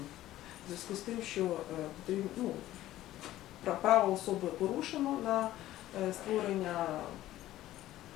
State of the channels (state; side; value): quieter; right; 14.5 dB